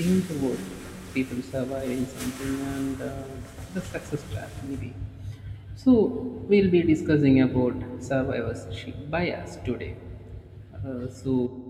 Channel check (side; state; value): both; identical; correlation 1.00